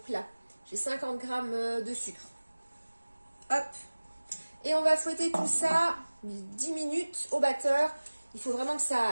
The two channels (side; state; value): both; inverted; correlation -1.00